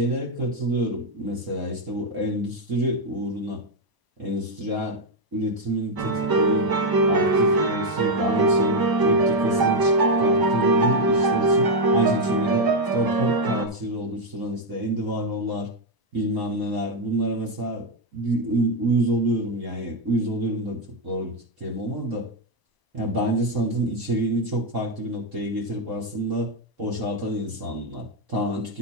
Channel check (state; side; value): late; left; 1.0 ms